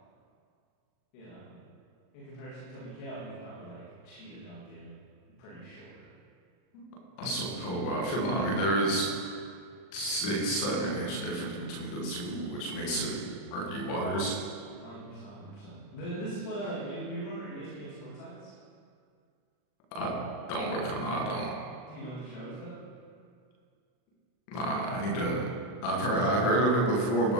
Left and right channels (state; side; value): late; right; 39 ms